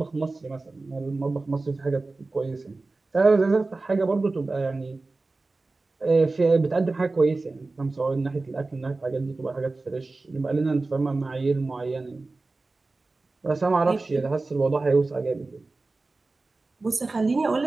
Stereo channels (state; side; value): quieter; left; 3.4 dB